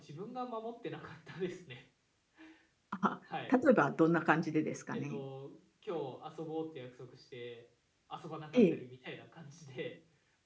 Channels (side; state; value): both; identical; correlation 1.00